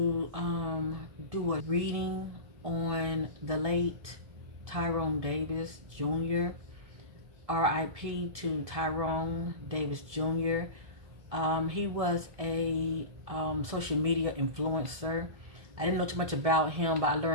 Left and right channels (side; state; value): left; late; 1.7 ms